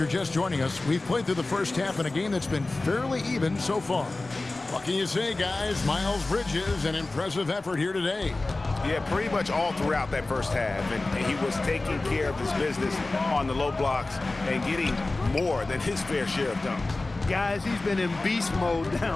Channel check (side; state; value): right; quieter; 3.1 dB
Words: just joining us, we've played through the first half in a game that's been fairly even so far. What can you say, guys? Miles Bridges, an impressive effort here today. Yeah, pretty much all throughout that first half. And he was taking care of his business on the low blocks and getting more than his fair share of dunks. Guys, he's been in beast mode